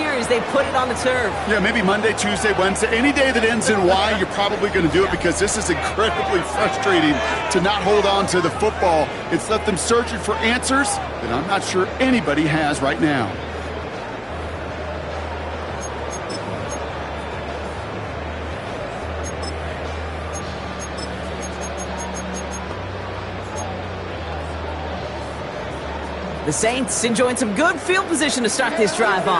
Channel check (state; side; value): identical; both; correlation 1.00